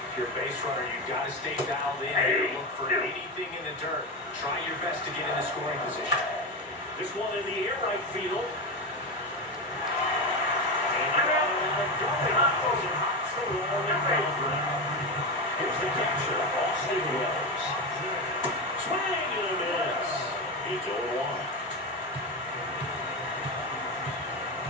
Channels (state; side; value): normal; both; correlation 0.16